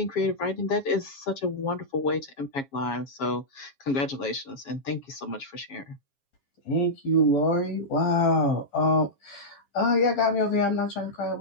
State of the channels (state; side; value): late; right; 7.3 ms